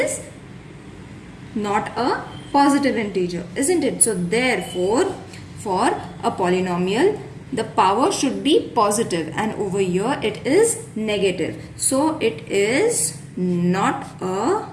not a positive integer, isn't it? So therefore, for a polynomial, the power should be positive, and over here it is negative. So it is not a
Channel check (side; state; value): both; identical; correlation 1.00